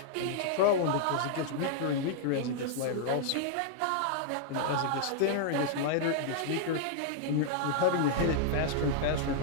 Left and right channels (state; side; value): different; both; correlation -0.01